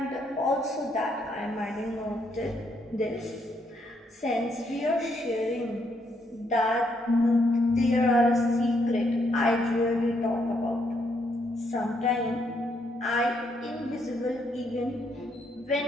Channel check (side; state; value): both; normal; correlation 0.74